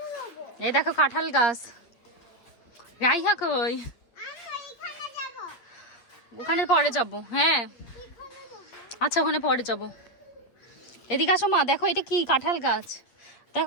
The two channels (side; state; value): right; late; 8.4 ms